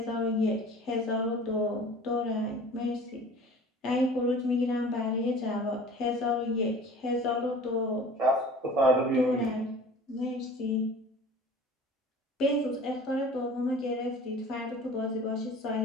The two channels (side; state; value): both; normal; correlation 0.44